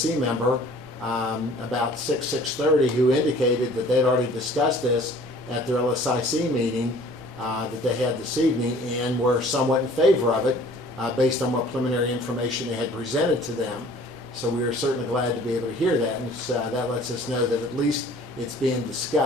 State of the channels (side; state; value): both; normal; correlation 0.51